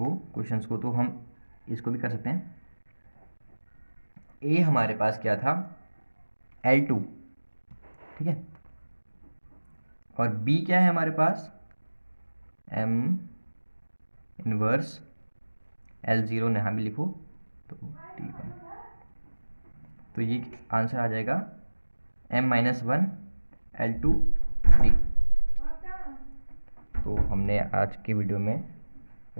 क्वेश्चंस को, तो हम इसको भी कर सकते हैं। ए हमारे पास क्या था, L2, ठीक है, और बी क्या है हमारे पास, M इनवर्स L0, यहाँ भी लिखो तो T1। तो ये आंसर आ जाएगा M-1 L2 D। तो हमने आज की वीडियो में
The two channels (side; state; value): both; inverted; correlation -1.00